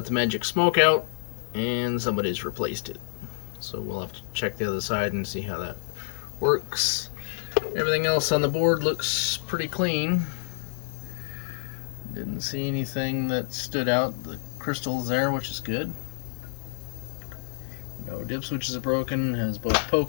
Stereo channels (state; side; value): silent; right; 60 dB below the other